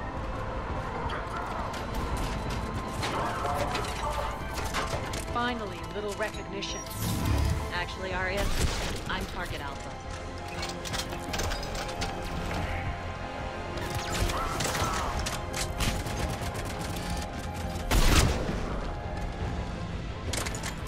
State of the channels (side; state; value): both; identical; correlation 1.00